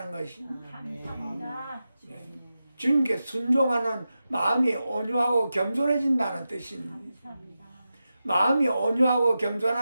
것이. 주님께 순종하는 마음이 온유하고 겸손해진다는 뜻입니다. 마음이 온유하고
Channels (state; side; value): inverted; both; correlation -0.92